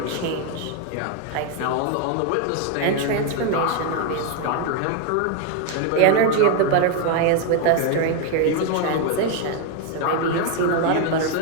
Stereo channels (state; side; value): different; both; correlation 0.01